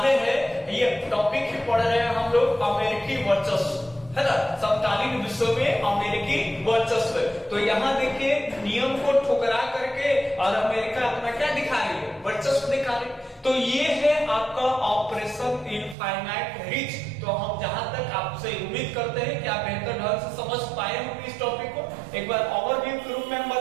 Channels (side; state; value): left; drops out; at 16.0 s